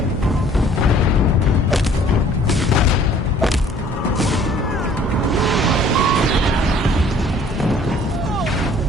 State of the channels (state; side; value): normal; both; correlation 0.55